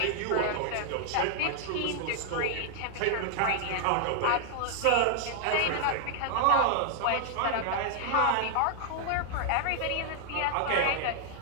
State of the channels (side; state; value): both; different; correlation 0.00